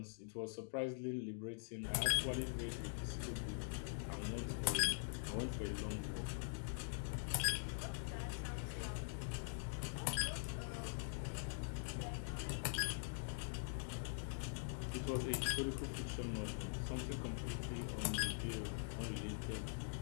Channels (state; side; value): silent; right; digital silence